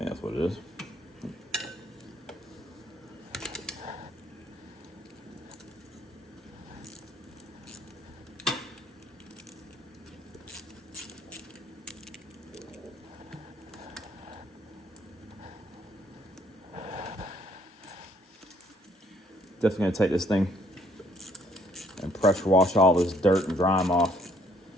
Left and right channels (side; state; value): both; normal; correlation 0.65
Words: that's what it is. Definitely gonna take this thing and pressure wash all this dirt and grime off